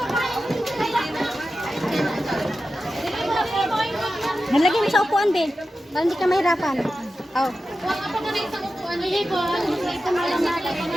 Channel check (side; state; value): both; normal; correlation 0.92